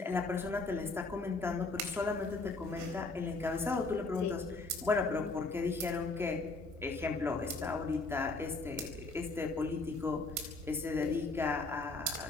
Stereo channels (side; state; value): right; quieter; 3.4 dB